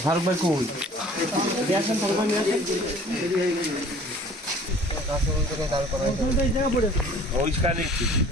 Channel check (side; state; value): both; normal; correlation 0.50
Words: ফারুক ভাই কই? আসেন ফারুক ভাই নিয়ে আসেন। ওইখানে